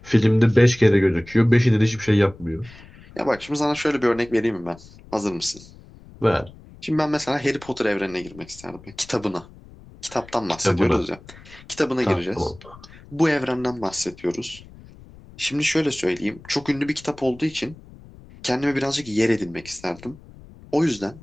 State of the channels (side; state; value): left; noise; rumble, 21 dB below the sound